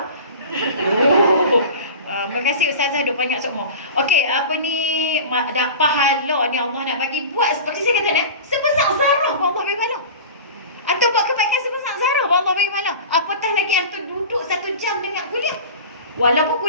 Terima kasih ustazah duk banyak sokmo. Okey, dah pahala ni Allah nak bagi buat seperti saya kata ni, sebesar zarah pun Allah bagi pahala. Atau buat kebaikan sebesar Zara, Allah bagi pahala. Apatah lagi antum duduk 1 jam dengar kuliah. Walaupun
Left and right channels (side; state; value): both; inverted; correlation -0.34